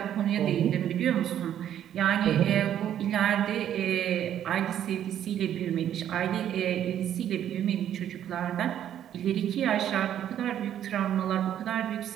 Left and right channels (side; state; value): left; quieter; 10.6 dB